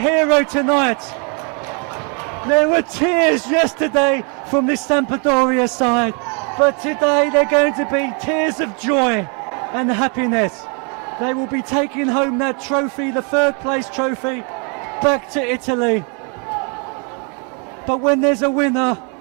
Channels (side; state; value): left; quieter; 36.4 dB